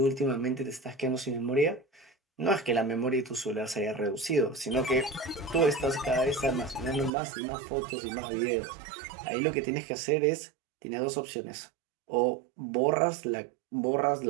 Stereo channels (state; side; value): drops out; left; at 7.1 s